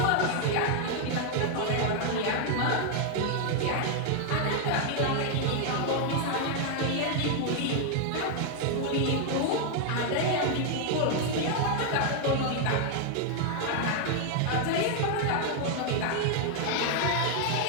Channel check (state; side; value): different; both; correlation 0.00